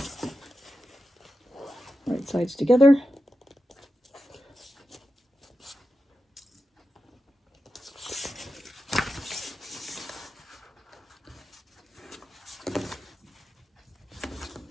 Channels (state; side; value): normal; both; correlation 0.90